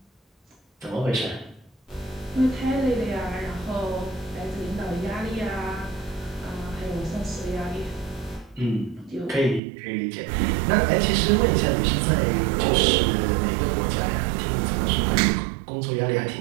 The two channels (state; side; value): drops out; left; at 9.6 s